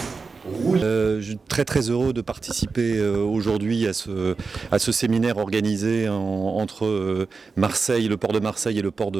rouge. Je suis très heureux de participer aujourd'hui à ce séminaire organisé entre Marseille, le port de Marseille et le port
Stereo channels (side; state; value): left; quieter; 4.5 dB